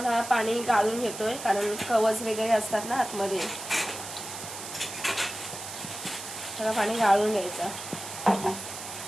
हा पाणी गाळून घेतोय, कारण कवच वगैरे असतात ना आतमध्ये. सगळं पाणी गाळून घ्यायचं.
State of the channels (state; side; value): noise; right; hiss, 10 dB below the sound